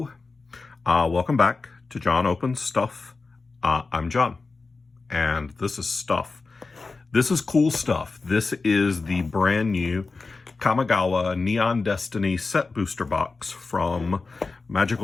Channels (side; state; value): right; quieter; 4.0 dB